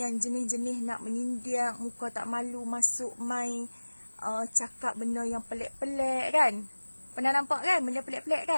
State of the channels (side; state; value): both; inverted; correlation -1.00